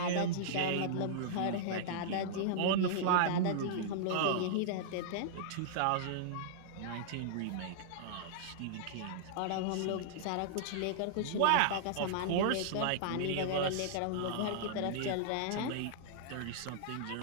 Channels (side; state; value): both; different; correlation -0.02